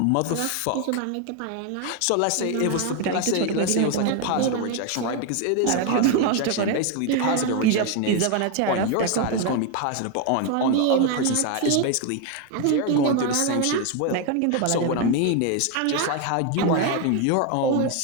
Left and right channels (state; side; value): different; both; correlation 0.01